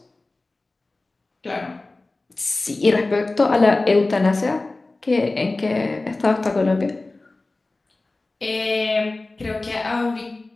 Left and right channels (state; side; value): quieter; right; 3.1 dB